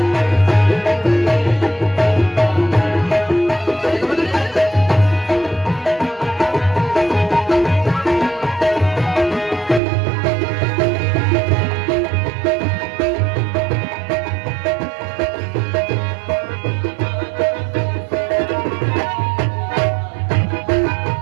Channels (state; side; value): drops out; left; at 9.8 s